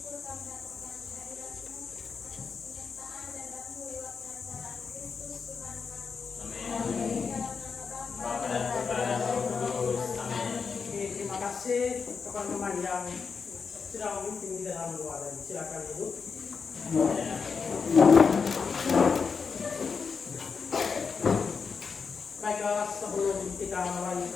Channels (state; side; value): quieter; right; 5.5 dB